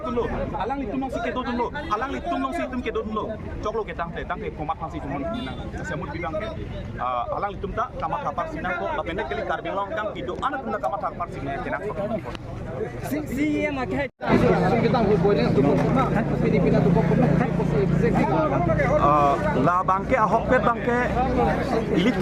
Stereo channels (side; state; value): both; identical; correlation 1.00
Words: tum lo alang li tum si ke do tum lo alang li tum si tum ke do tum lo choklo ke tang te komat pang si tum nang sasemut bidang ke alang li tum ta kamat kapar sinang ko lapende kali kar biang long kang pido anak tum ta kamat kapar sinang ke nang ko si em ak hai kita ho boy ne tu ko Filipina tu ko la bangke ahok pet bangke ilit